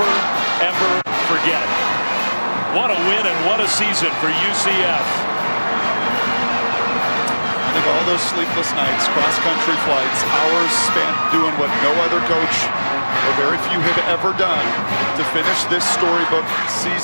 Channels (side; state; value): both; inverted; correlation -1.00